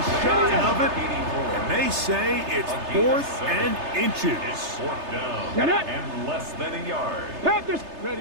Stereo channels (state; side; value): late; left; 3.3 ms